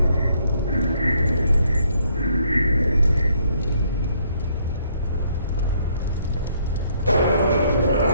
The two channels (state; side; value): inverted; both; correlation -0.68